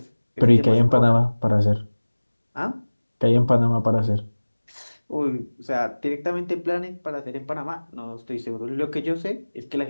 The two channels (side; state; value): both; inverted; correlation -1.00